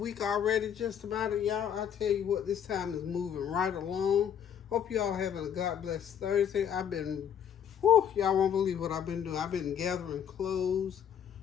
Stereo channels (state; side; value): quieter; right; 8.7 dB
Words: already, just about it, y'all. I tell you what, this time is moving right along. Hope y'all having a God bless Thursday. Y'all won't believe what I've been doing. I've been gathering clothes